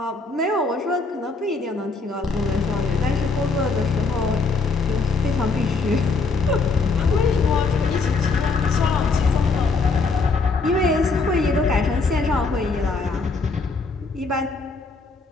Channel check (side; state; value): right; quieter; 4.0 dB